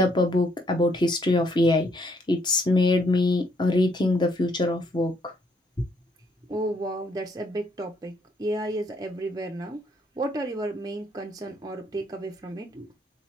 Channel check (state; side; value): normal; both; correlation 0.70